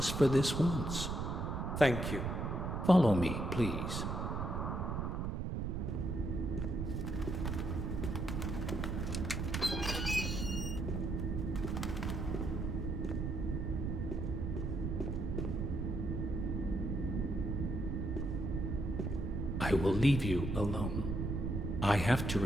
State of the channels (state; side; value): noise; right; rumble, 1 dB below the sound